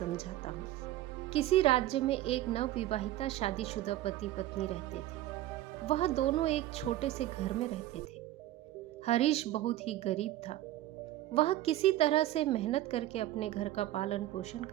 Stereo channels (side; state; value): left; quieter; 14.6 dB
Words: हूँ। किसी राज्य में एक नवविवाहिता शादीशुदा पति पत्नी रहते थे। वह दोनों एक छोटे से घर में रहते थे। हरीश बहुत ही गरीब था। वह किसी तरह से मेहनत करके अपने घर का पालन पोषण